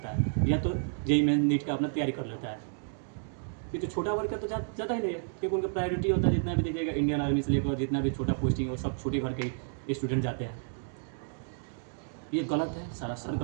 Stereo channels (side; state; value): left; silent; digital silence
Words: है, या तो जेईई मेंस नीट का अपना तैयारी कर लेता है। ये तो छोटा वर्ग का तो ज़्यादा ही नहीं है, क्योंकि उनका प्रायोरिटी होता है, जितना भी देखिएगा इंडियन आर्मी से लेकर जितना भी छोटा पोस्टिंग वो सब छोटे घर के स्टूडेंट जाते हैं। ये गलत है, सरासर